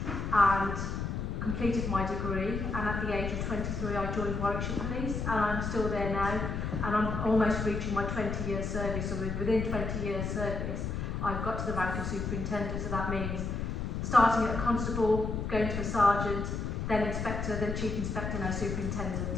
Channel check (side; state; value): left; noise; rumble, 3 dB below the sound